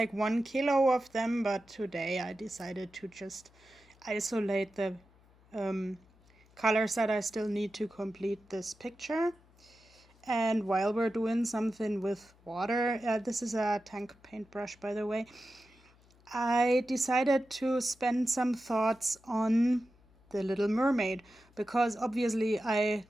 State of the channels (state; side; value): noise; left; hum, 29 dB below the sound